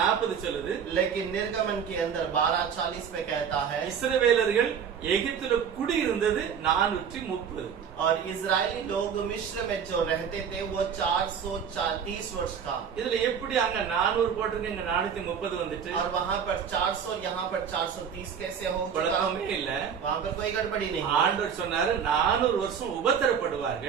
சொல்லுது. लेकिन निर्गमन के अंदर 12:40 पे कहता है இஸ்ரவேலர்கள் எகிப்துல குடியிருந்தது 430. और इजरायली लोग मिस्र में जो रहते थे वो 430 वर्ष का। இதுல எப்படி அங்க 400 போட்டிருக்கு, இங்க 430 வந்துட்டு? और वहाँ पर 400 यहाँ पर 430 कैसे हो चुका? குழப்பமே இல்ல. वहाँ पर कोई गड़बड़ी नहीं। ஆண்டவர் சொன்னாரு 400 வருஷம்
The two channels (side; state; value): left; quieter; 7.4 dB